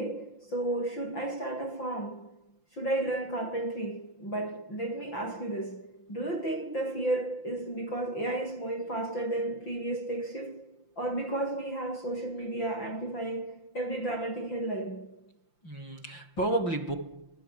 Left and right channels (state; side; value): late; right; 5.8 ms